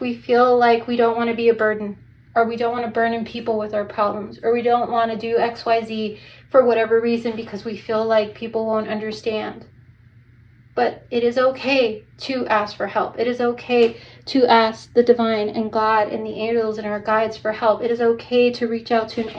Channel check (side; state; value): both; identical; correlation 1.00